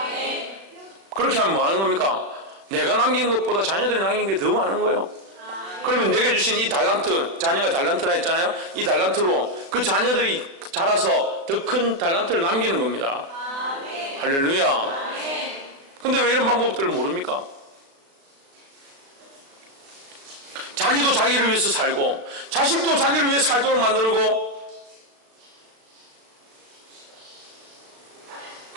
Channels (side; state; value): left; late; 36 ms